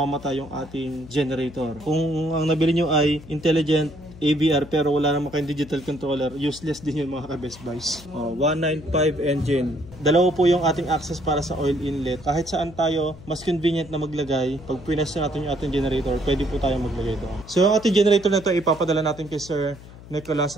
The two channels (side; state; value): left; noise; hum, 18 dB below the sound